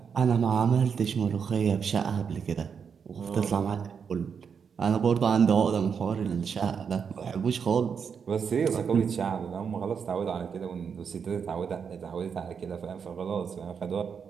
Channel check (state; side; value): quieter; left; 6.6 dB